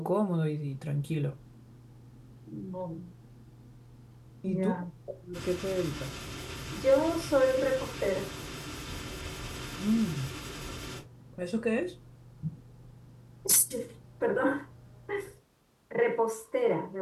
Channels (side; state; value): both; identical; correlation 1.00